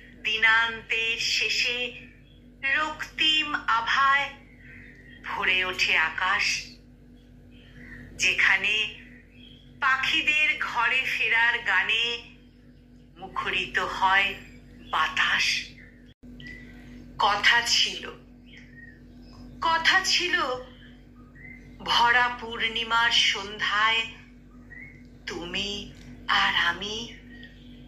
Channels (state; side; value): identical; both; correlation 1.00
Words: দিনান্তের শেষে রক্তিম আভায় ভরে ওঠে আকাশ, যেখানে পাখিদের ঘরে ফেরার গানে মুখরিত হয় বাতাস। কথা ছিল ভরা পূর্ণিমার সন্ধ্যায় তুমি আর আমি